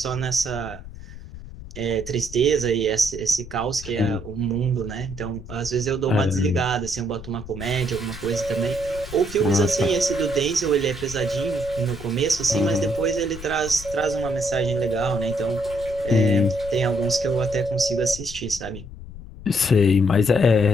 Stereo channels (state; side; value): noise; left; rumble, 13 dB below the sound